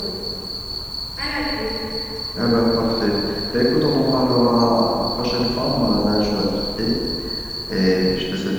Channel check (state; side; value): noise; right; hiss, 25 dB below the sound